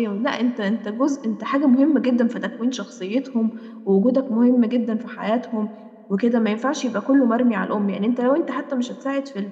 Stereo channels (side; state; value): both; identical; correlation 1.00